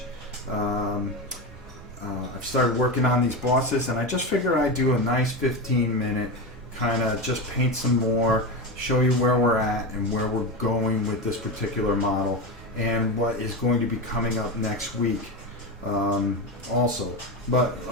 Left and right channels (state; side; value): normal; both; correlation 0.18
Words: I've started working on these bosses, and I just figured I'd do a nice 15-minute kind of just paint some more, show you where we're at and where we're going with this particular model and what is going to be coming up next week also. But